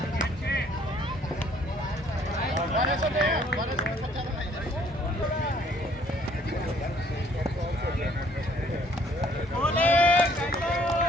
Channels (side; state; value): both; normal; correlation 0.62